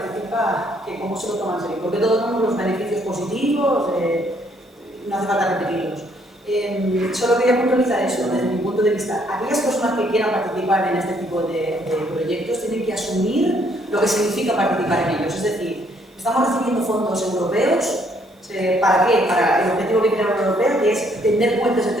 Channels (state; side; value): normal; both; correlation 0.67